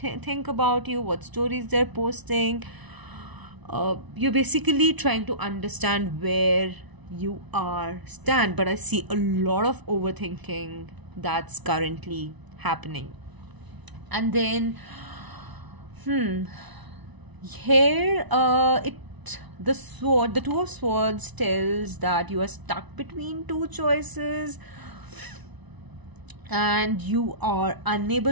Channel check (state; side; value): late; left; 1.0 ms